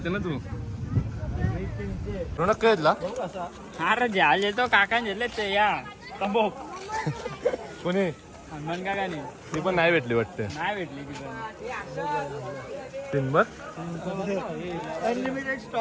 ना तू. रोनक काय येतला अरे जहाज येतो काका घेतले ते या तंबोक कोणी हनुमान काकाने. ती पण नाही भेटली वाटते. नाही भेटली ती पण. टिंबर अनलिमिटेड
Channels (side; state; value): both; identical; correlation 1.00